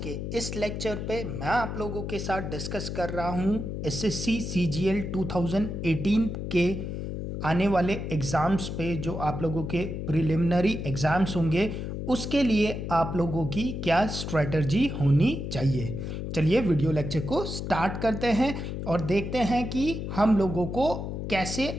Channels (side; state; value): left; noise; hum, 5 dB below the sound